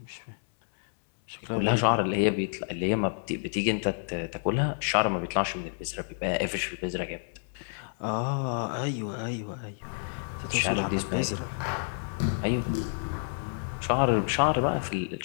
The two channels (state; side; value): silent; right; 58 dB below the other